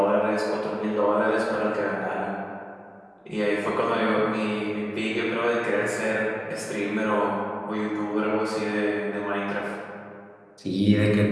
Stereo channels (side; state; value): both; identical; correlation 1.00